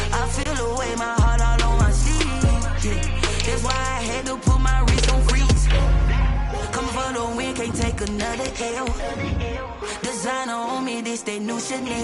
I feel the way, my heart all on my sleeve. Yeah, that's why I had to put my wrist on freeze. Coming for the win, can't take another L. Designer on me, this that new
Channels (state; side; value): identical; both; correlation 1.00